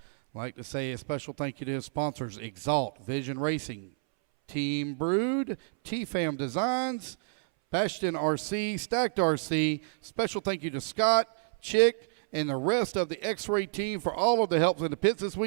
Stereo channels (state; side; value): silent; left; 58 dB below the other